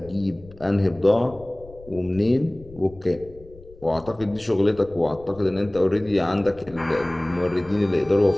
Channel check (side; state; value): left; noise; rumble, 21 dB below the sound